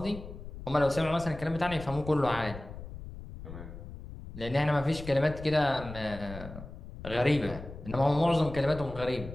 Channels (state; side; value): noise; left; rumble, 12 dB below the sound